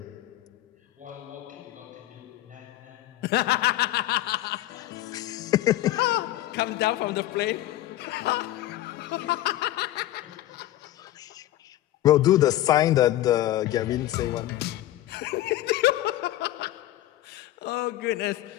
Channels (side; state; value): right; quieter; 14.7 dB